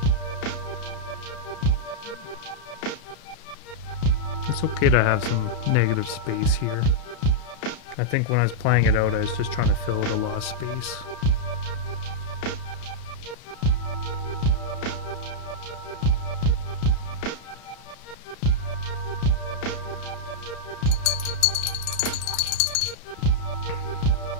It's okay to have some negative space here. I think when I was playing it out, I was just trying to fill out a lot of space.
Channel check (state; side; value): late; right; 32 ms